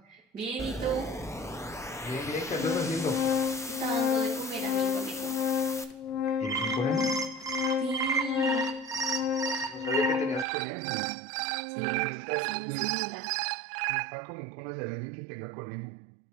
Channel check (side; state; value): left; drops out; at 10.5 s